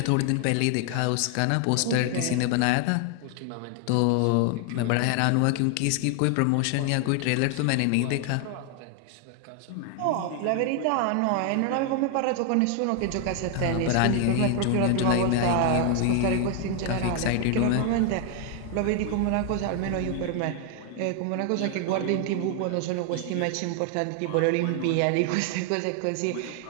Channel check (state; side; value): different; both; correlation 0.00